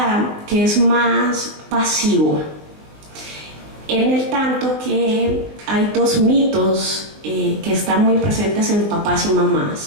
que es más pasivo. en el tanto que hay dos mitos que están muy presentes en papás y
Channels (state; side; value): late; left; 20 ms